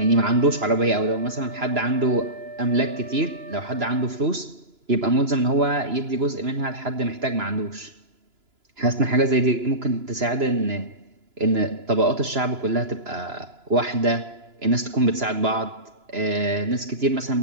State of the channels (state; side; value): late; left; 2.9 ms